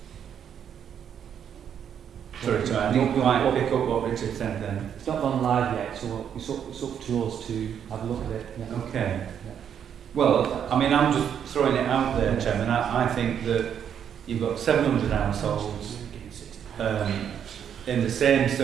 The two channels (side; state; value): left; quieter; 8.6 dB